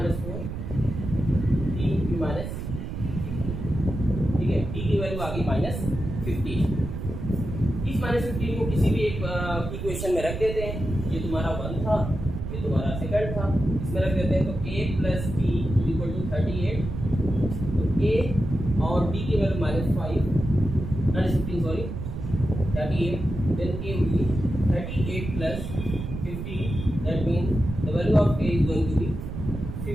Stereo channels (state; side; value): noise; right; rumble, 6 dB below the sound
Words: d minus, ठीक है, d की वैल्यू आ गई -15। इस -15 को किसी भी एक इक्वेशन में रख देते हैं। ये तुम्हारा 1 था, ये तुम्हारा सेकंड था, इसमें रख देते हैं। तो a plus d equal to 38, तो a और d की value -15 sorry 38, then a will be 38 plus 15, that means the value of a is going to be